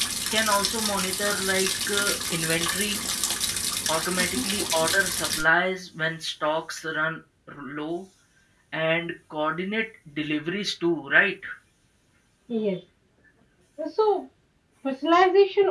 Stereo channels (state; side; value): identical; both; correlation 1.00